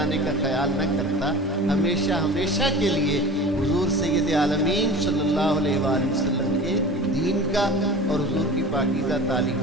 کا خیال نہ کرتا، ہمیشہ ہمیشہ کے لیے حضور سید عالمین صلی اللہ علیہ وآلہ وسلم کے دین کا اور حضور کی پاکیزہ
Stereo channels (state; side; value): normal; both; correlation 0.37